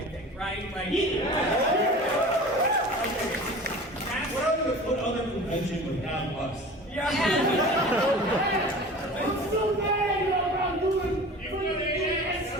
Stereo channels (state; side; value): normal; both; correlation 0.38